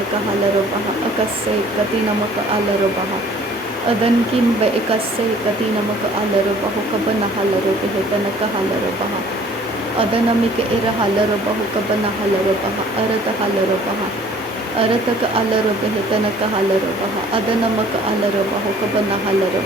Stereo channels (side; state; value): both; normal; correlation 0.54